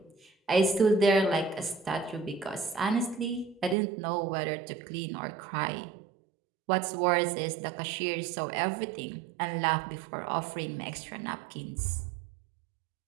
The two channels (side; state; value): left; drops out; at 3.8 s